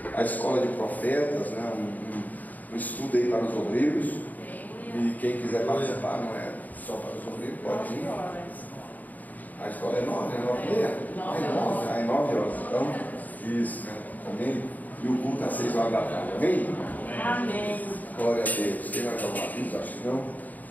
a escola de profetas, né, um estudo aí para os obreiros, e quem quiser participar, não é só para os obreiros, pode ir. A escola é 9, né? 9h30? É 9 horas. Então, isso, né? Amém? E o culto às 6 horas da tarde. Amém? Amém. Glória a Deus. Quem vai dar um aviso? Acho que não. O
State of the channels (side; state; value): right; late; 0.080 ms